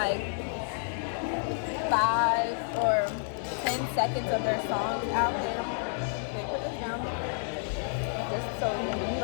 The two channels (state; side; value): silent; right; digital silence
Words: 5 or 10 seconds of their songs out there. Wait, put this down. Just so you